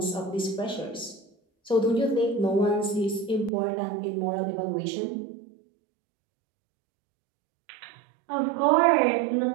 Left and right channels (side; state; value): left; drops out; at 3.5 s